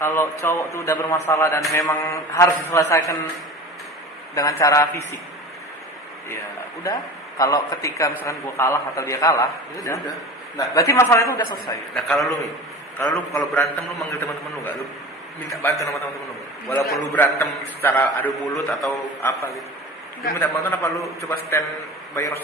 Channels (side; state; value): both; normal; correlation 0.36